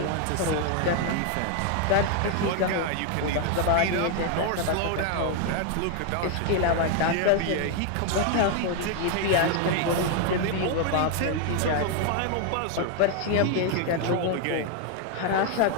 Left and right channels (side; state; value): both; different; correlation 0.01